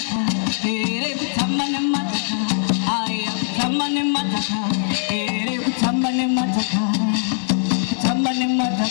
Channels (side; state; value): right; silent; 65 dB below the other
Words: ere tamane mataka, aya tamane mataka, ere tamane mataka, tamane